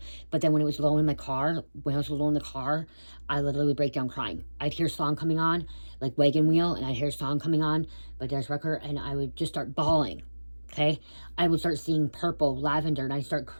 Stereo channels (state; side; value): inverted; both; correlation -1.00